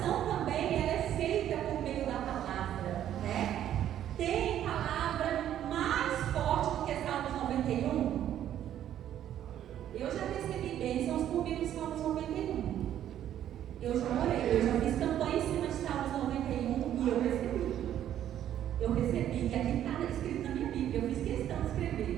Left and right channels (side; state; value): left; quieter; 11.1 dB